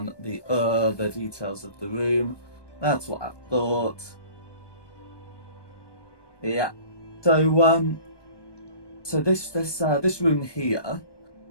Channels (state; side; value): late; right; 1.2 ms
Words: details of the room. That's what I thought. Yeah. So this room here,